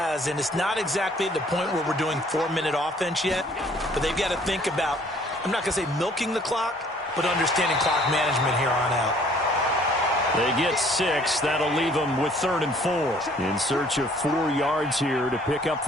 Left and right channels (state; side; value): normal; both; correlation 0.58